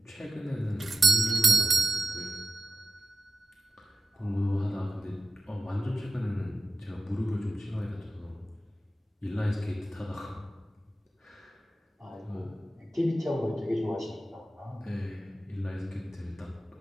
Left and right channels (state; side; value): normal; both; correlation 0.92